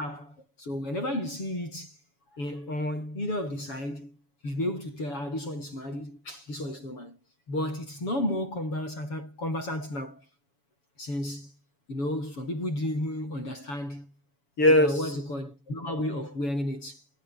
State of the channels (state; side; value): late; right; 7.1 ms